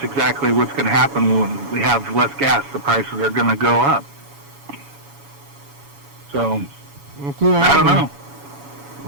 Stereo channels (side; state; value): left; late; 7.1 ms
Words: exactly what's going to happen when we have less gas. The prices are going to go up. So, I don't know.